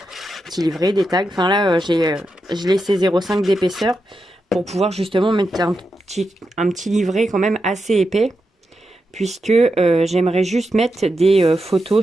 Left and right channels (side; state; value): both; normal; correlation 0.87